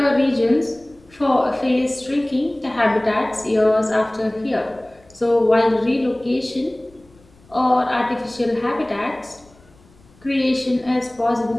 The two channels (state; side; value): noise; left; rumble, 29 dB below the sound